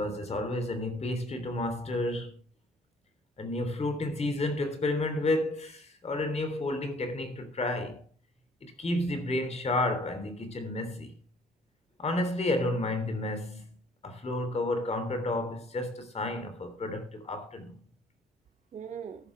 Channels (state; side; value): normal; both; correlation 0.58